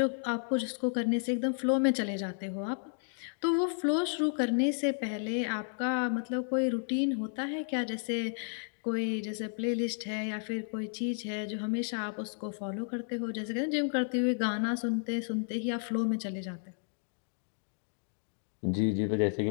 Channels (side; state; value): right; silent; 56 dB below the other